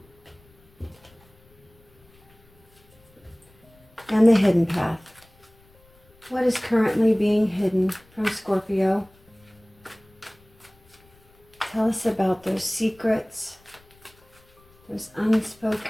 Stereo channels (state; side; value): noise; left; rumble, 30 dB below the sound